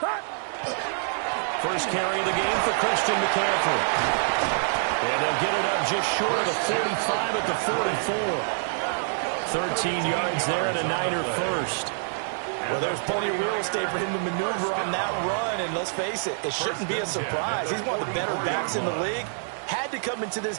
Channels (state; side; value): silent; left; digital silence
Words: First carry of the game for Christian McCaffrey. And they'll get it up just short of the 45 at the 44. 13 yards there and a Niner first. Well, there's plenty of real estate for him to maneuver on that run, and let's face it, it shouldn't be a surprise. He's one of the better backs in the league. Had to come into this